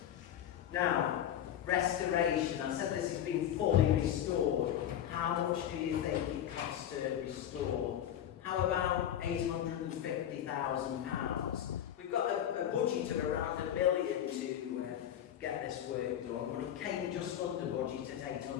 Now, restoration, I said this has been fully restored. How much do you think it costs to restore? How about £850,000? We've got a budget of around £1 million to get this work done, but it came just under budget at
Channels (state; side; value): quieter; right; 10.6 dB